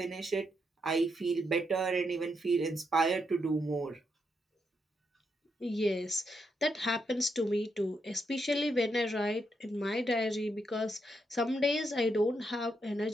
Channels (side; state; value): both; normal; correlation 0.80